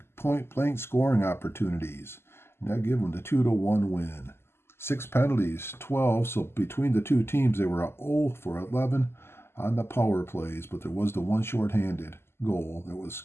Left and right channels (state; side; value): late; right; 0.12 ms